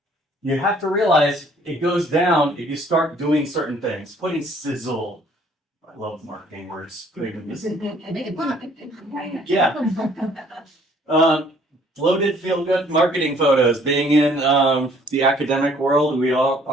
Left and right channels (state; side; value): normal; both; correlation 0.60